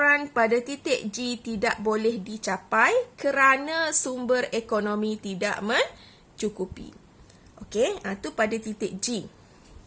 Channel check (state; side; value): identical; both; correlation 1.00